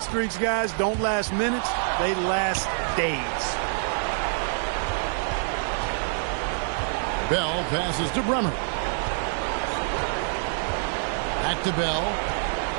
streaks, guys, don't last minutes. They last days. Bell passes to Bremer. Back to Bell.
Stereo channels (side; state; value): left; silent; digital silence